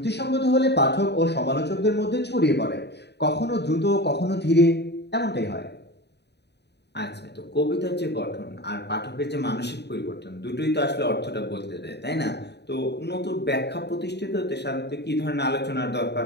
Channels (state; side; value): late; right; 0.49 ms